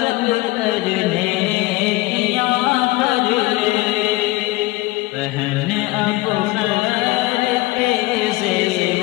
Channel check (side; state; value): right; quieter; 20.0 dB